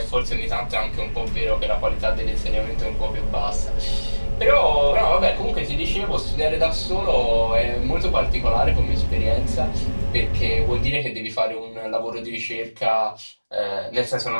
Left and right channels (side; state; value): both; inverted; correlation -1.00